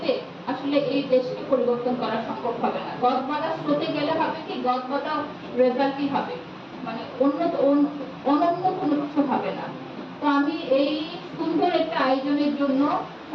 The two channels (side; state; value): both; identical; correlation 1.00